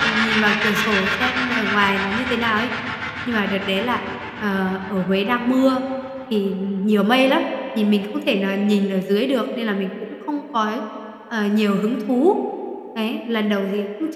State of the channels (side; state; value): both; identical; correlation 1.00